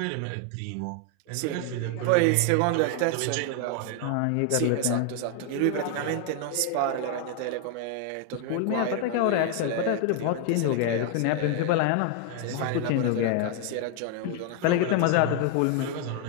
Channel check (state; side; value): different; both; correlation 0.00